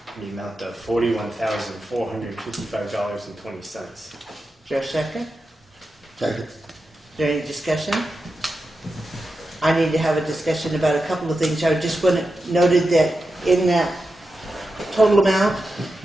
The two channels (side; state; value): both; normal; correlation 0.90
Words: in the amount of $41,455.20. Is there a second? Second. Is there any discussion? I need to have a discussion about a couple of things. I just want to noted that in that total amount